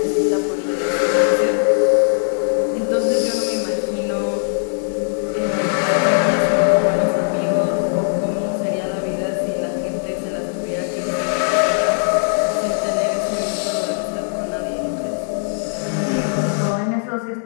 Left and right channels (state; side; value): silent; right; digital silence